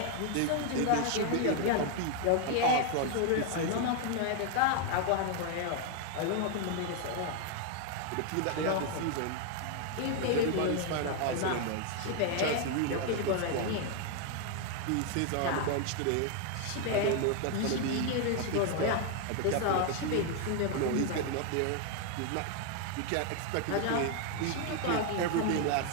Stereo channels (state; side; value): different; both; correlation 0.00